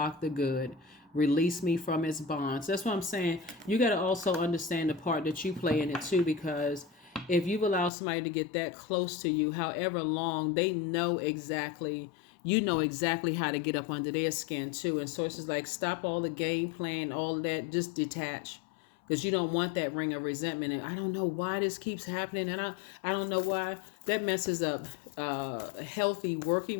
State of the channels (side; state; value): right; drops out; at 7.9 s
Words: the good. Release me from its bonds. That's what I'm saying. You got to also understand the part that you play in it too, because if you've allowed somebody to get that close to you, however long, they know exactly, how to get up under their skin too. And so it's just like, stop all the game playing, all that, just detach. Because you don't want that ring of resentment. And I don't know why this keeps happening. And I don't know why. That messes up healthy